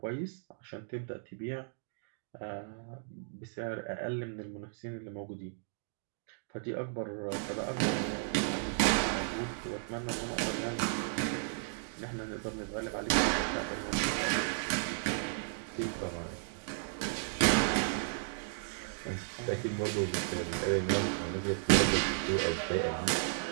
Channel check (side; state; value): left; silent; digital silence